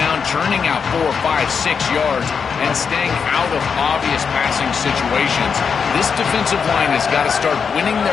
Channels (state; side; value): quieter; right; 6.1 dB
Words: churning out 4, 5, 6 yards, and staying out of obvious passing situations. This defensive line has got to start winning